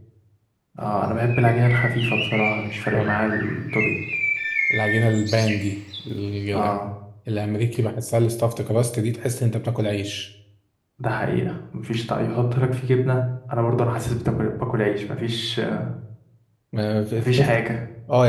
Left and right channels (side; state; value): both; identical; correlation 1.00